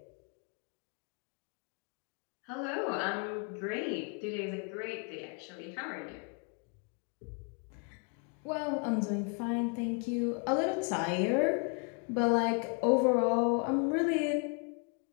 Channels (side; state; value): right; quieter; 36.5 dB